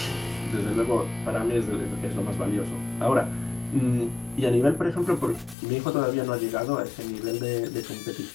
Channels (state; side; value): drops out; right; at 5.6 s